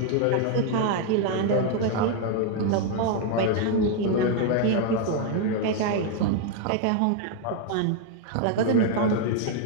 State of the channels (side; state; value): both; different; correlation 0.00